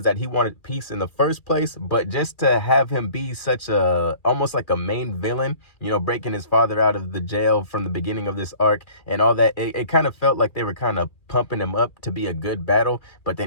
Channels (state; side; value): late; right; 2.4 ms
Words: that he wanted peace in the first place, but just to have him be such a, almost like a main villain, you know, breaking his father out of the jail from the beginning of this arc and all that, it kind of felt like they were kind of pumping him up to be a good battle, but